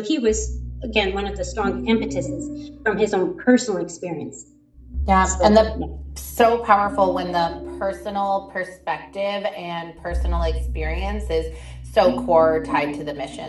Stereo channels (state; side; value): identical; both; correlation 1.00